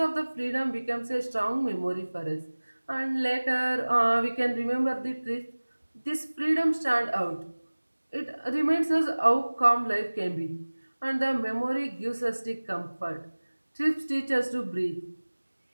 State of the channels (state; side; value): inverted; both; correlation -1.00